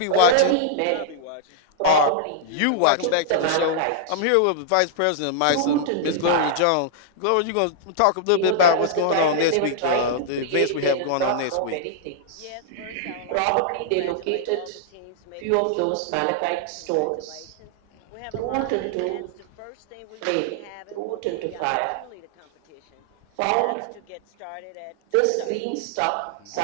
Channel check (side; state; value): both; different; correlation -0.01